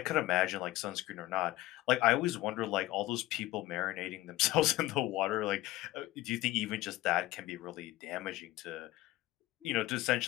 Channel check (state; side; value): quieter; right; 17.1 dB